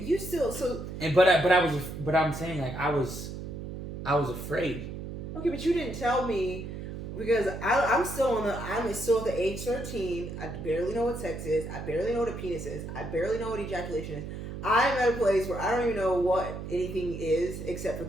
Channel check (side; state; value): right; noise; hum, 8 dB below the sound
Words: still so. and but I'm saying like I was afraid. Okay, but you didn't tell me because I'm still at the age 13. I barely know what sex is. I barely know what a penis is. I barely know what ejaculation is. I'm at a place where I don't even know what anything is except for